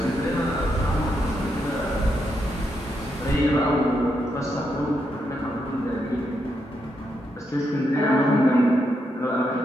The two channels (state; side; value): normal; both; correlation 0.81